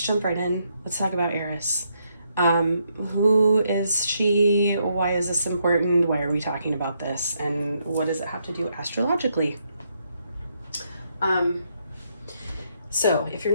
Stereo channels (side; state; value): both; inverted; correlation -0.76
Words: jump right in. Let's talk about Eris. Who is she? Why is this important? Why are we talking about this? And what does it have to do astrologically? So if you're